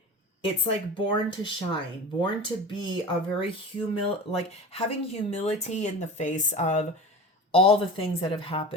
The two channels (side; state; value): both; normal; correlation 0.33